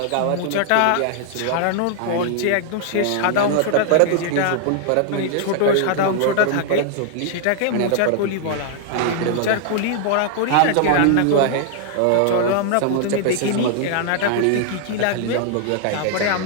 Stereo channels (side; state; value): both; different; correlation 0.00